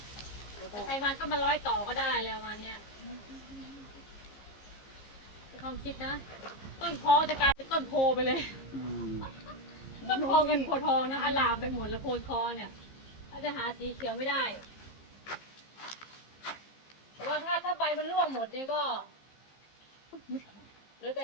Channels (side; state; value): right; late; 15 ms